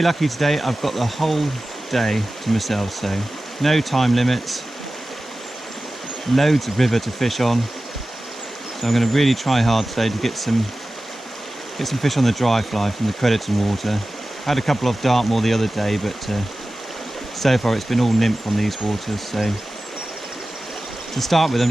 lucky today, I've got the whole day to myself, so no time limits, loads of river to fish on. So I'm going to really try hard today to get some fish on the dry fly from the Crediton water. I had a couple off Dartmoor the other day, but so far it's been all nymph on these waters. So to start with, I'm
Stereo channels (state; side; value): normal; both; correlation 0.95